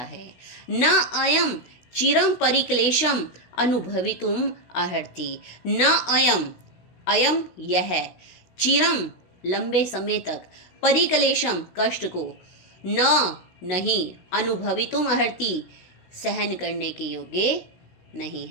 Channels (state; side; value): late; right; 16 ms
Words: न अयम चिरम परिक्लेशम अनुभवितुम अर्हति, न अयम, अयम यह, चिरम लंबे समय तक, परिक्लेशम कष्ट को, न नहीं, अनुभवितुम अर्हति सहन करने के योग्य नहीं